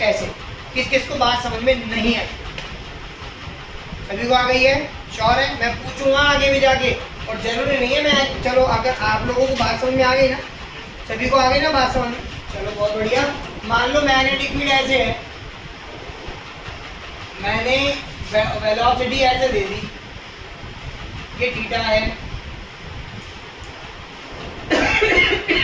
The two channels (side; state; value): both; identical; correlation 1.00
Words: ऐसे। किस किस को बात समझ में नहीं है? सभी को आ गई है? श्योर है? मैं पूछूंगा आगे भी जाके, और जरूरी नहीं है मैं, चलो अगर आप लोगों को बात समझ में आ गई ना, सभी को आ गई ना बात समझ में? चलो बहुत बढ़िया। मान लो मैग्नेटिक फील्ड ऐसे है, मैंने वेलोसिटी ऐसे दे दी, ये थीटा है।